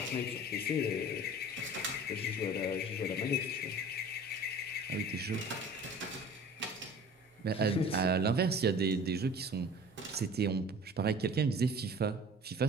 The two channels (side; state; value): both; normal; correlation 0.43